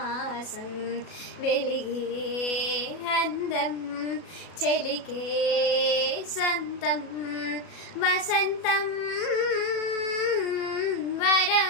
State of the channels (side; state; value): right; late; 37 ms